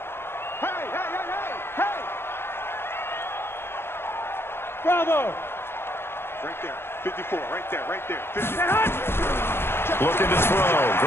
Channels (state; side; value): late; right; 0.11 ms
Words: Bravo. Right there. 54. Right there. 54. Looking to throw.